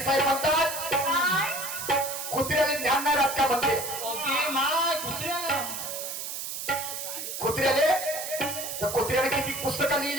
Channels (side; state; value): right; noise; hiss, 6 dB below the sound